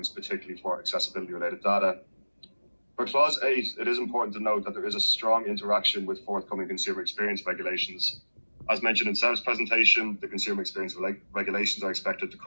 particularly for accessibility related data. For clause 8, it is important to note that there is a strong interaction with forthcoming consumer experience regulations. As mentioned in Seb's presentation, the consumer experience regulations are expected to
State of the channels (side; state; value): both; inverted; correlation -1.00